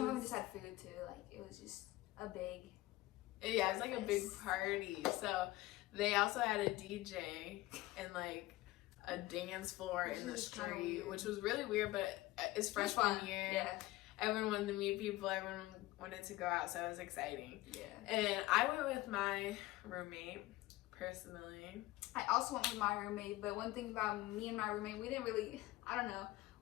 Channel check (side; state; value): right; quieter; 18.3 dB